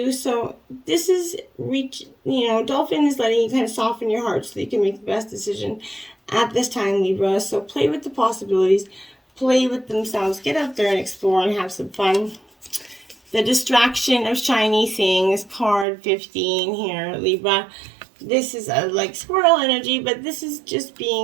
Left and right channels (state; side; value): drops out; left; at 15.9 s